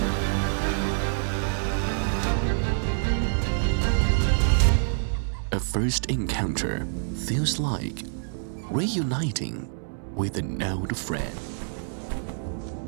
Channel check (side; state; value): left; silent; digital silence